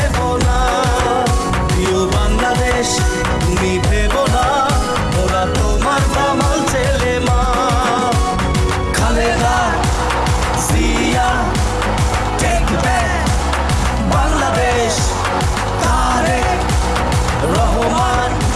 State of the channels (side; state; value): both; identical; correlation 1.00